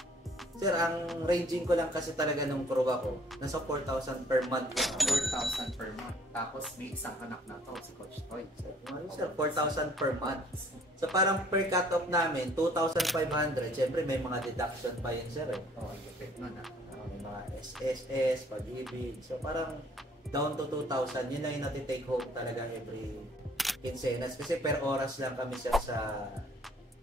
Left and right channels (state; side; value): normal; both; correlation 0.58